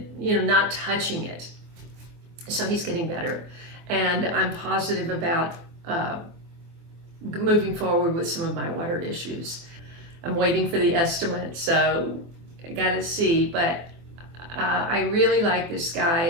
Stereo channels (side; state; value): left; late; 24 ms